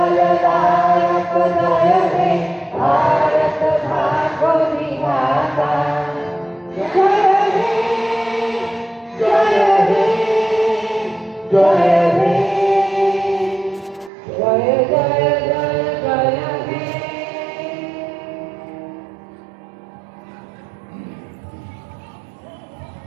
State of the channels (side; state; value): left; drops out; at 14.1 s